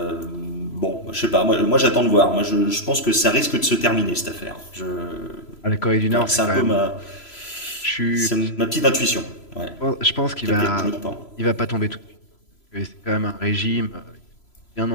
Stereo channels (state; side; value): late; right; 3.0 ms